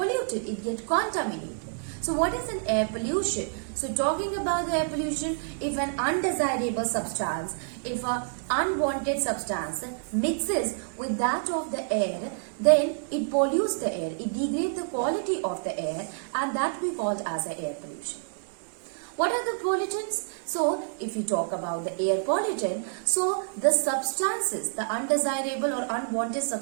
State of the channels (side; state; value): left; silent; digital silence